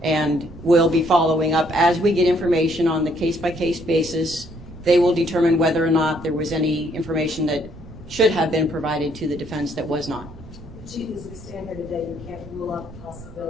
and will be following up as we get information on the case-by-case basis. They will determine whether or not there was any information that should have been provided to the defense that was not. Chief, as we stand here today, you can't rule out the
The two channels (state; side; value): noise; right; rumble, 18 dB below the sound